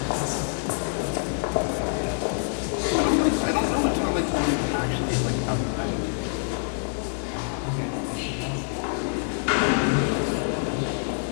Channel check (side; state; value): right; silent; digital silence